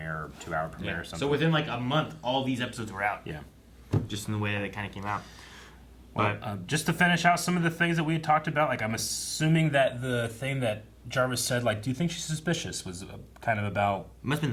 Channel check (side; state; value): both; identical; correlation 1.00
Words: or 2-hour premiere or something. So within like a month, all these episodes were out. Yeah. Just in the way that they kind of came out. Well, just to finish out some of the things that we had talked about, like I'm assuming that the thing that Jarvis said, like, do you think she's suspicious, was kind of about... Must have